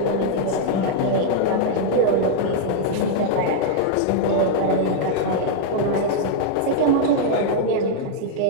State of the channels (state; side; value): different; both; correlation -0.01